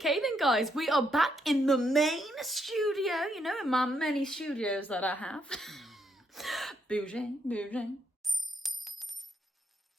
then, guys, we are back in the main studio, you know, in my many studios that I have. Bouging.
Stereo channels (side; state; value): both; normal; correlation 0.77